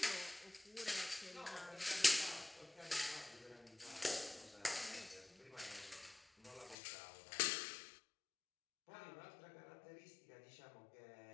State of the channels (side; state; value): right; drops out; at 6.8 s